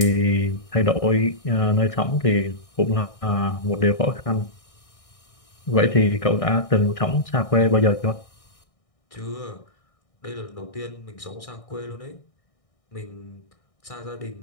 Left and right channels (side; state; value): right; late; 1.6 ms